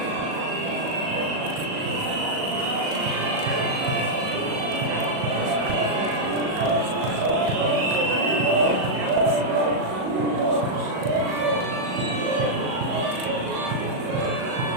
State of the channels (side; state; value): left; late; 38 ms